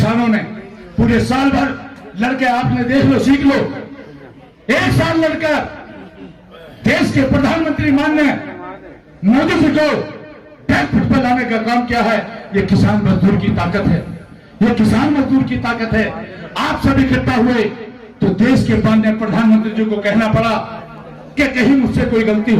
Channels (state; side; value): identical; both; correlation 1.00